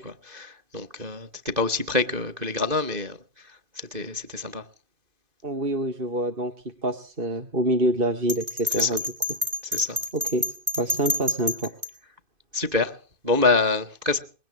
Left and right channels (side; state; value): left; late; 2.5 ms